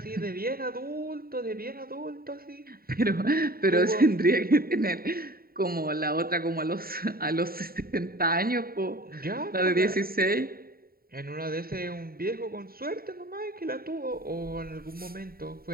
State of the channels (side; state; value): left; late; 0.43 ms